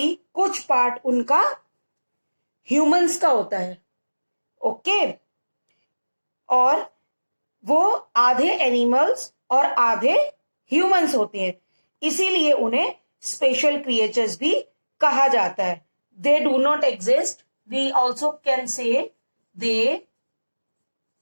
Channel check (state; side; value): inverted; both; correlation -1.00